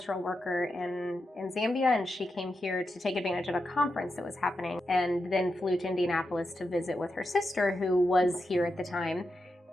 worker in Zambia, and she came here to take advantage of a conference that was happening, and then flew to Indianapolis to visit with her sister, who was here at the time.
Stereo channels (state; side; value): normal; both; correlation 0.87